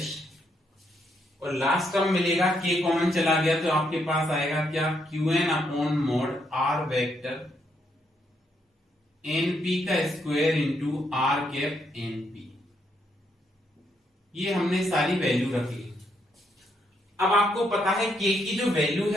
और last term मिलेगा K common चला गया तो आपके पास आएगा क्या, Qn upon mod R vector NP का square into R cap NP। ये हमने सारी वैल्यू रख ली। अब आपको पता है K की जो वैल्यू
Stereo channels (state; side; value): normal; both; correlation 0.76